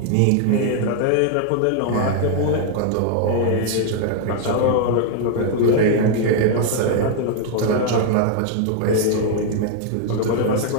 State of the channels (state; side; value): different; both; correlation 0.00